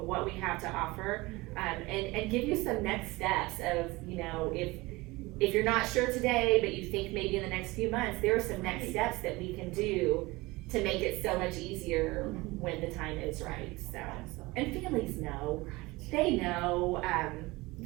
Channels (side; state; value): left; quieter; 21.8 dB